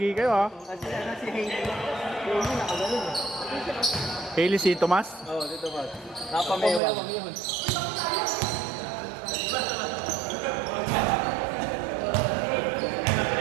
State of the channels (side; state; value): left; drops out; at 6.8 s